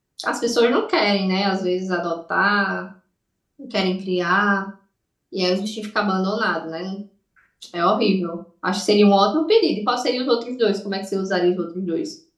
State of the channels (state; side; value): identical; both; correlation 1.00